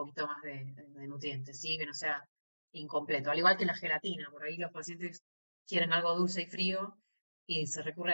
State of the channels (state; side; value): inverted; both; correlation -1.00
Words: más de nutrientes, ¿sí? Que no sea incompleto. Al igual que la gelatina, por ahí los pacientes quieren algo dulce y frío y se recurre